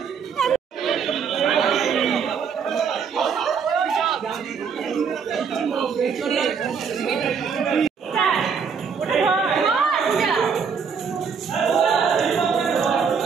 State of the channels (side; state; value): left; quieter; 6.2 dB